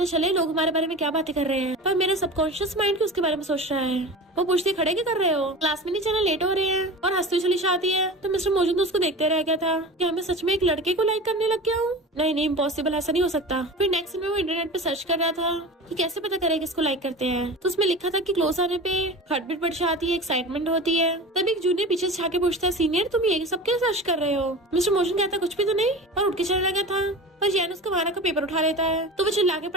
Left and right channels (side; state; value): both; normal; correlation 0.33